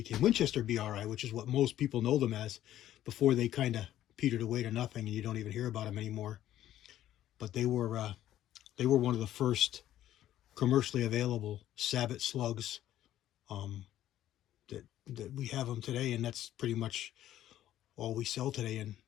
Winchester BRI, which is what most people know them as, before they kind of petered away to nothing, and you don't even hear about them anymore. But they were one of the first commercially available Sabot slugs that we have them today, and that's pretty much all we sell today in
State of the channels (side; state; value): right; quieter; 12.6 dB